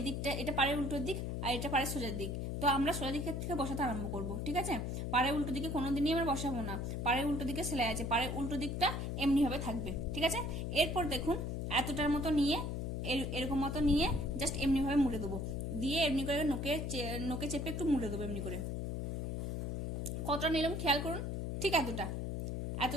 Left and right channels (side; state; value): left; noise; hum, 2 dB below the sound